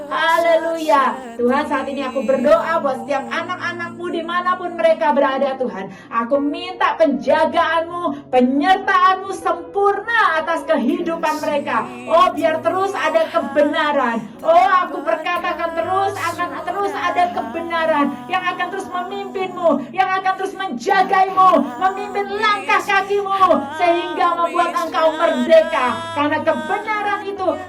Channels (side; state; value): both; identical; correlation 1.00